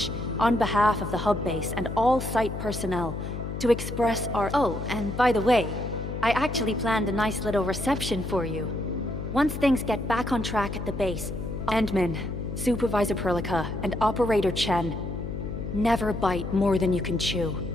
on behalf of the hub base and all site personnel, to express our— Oh, and by the way, I actually planned a nice little reception for you. Once things get back on track at the base, Endman, Supervisor Perlica, and Operator Chen, never bite more than you can chew.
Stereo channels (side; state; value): left; noise; hum, 6 dB below the sound